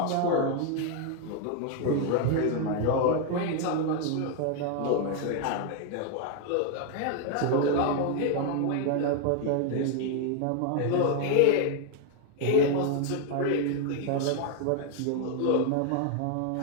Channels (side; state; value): both; different; correlation 0.01